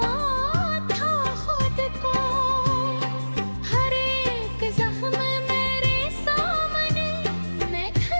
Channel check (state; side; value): inverted; both; correlation -1.00